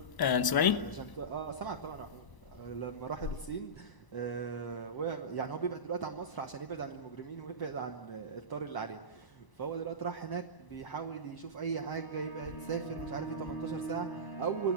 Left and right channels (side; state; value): right; late; 1.0 ms